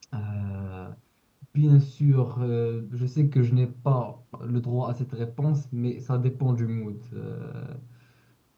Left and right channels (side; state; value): both; identical; correlation 1.00